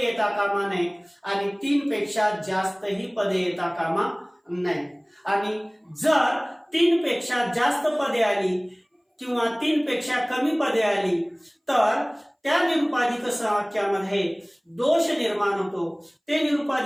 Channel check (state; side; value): identical; both; correlation 1.00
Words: येता कामा नये आणि 3 पेक्षा जास्तही पदे येता कामा नये। आणि जर 3 पेक्षा जास्त पदे आली किंवा 3 पेक्षा कमी पदे आली तर त्या निरुपाधिक संवाक्यामध्ये दोष निर्माण होतो, ते